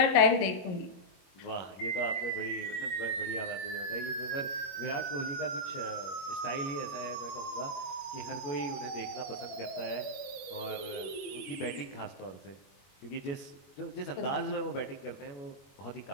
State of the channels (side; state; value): right; late; 21 ms